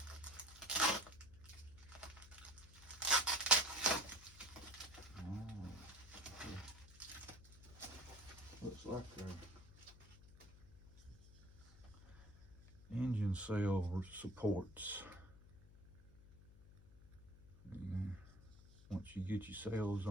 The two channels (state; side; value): noise; left; hum, 19 dB below the sound